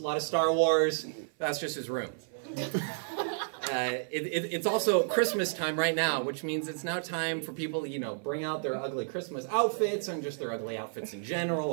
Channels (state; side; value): silent; left; 57 dB below the other